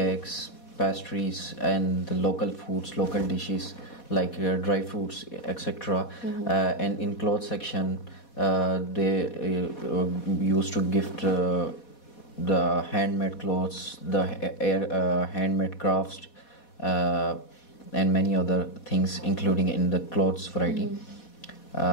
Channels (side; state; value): right; late; 4.2 ms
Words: pastries, and the local foods, local dishes like dry fruits, etc. And in clothes section, they used to gift the handmade clothes, the handmade crafts, and many other things, including in the clothes variety.